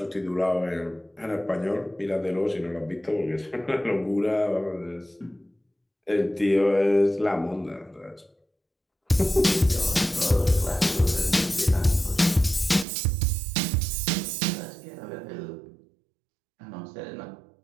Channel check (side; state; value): left; drops out; at 12.9 s